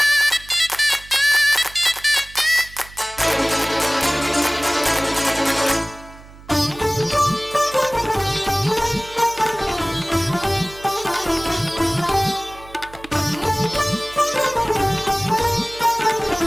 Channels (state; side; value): noise; right; hum, 20 dB below the sound